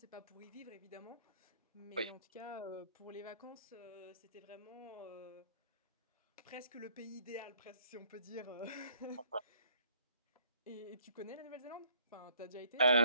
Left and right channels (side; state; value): both; inverted; correlation -0.61